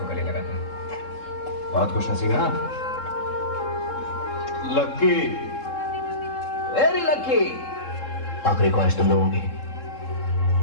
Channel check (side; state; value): right; late; 3.7 ms